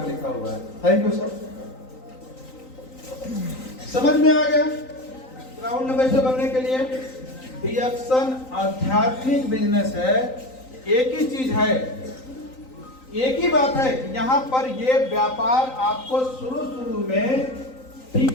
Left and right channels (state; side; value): late; right; 3.9 ms